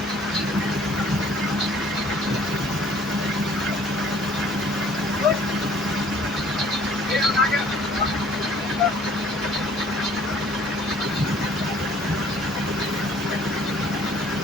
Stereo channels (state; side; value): noise; right; hum, 25 dB below the sound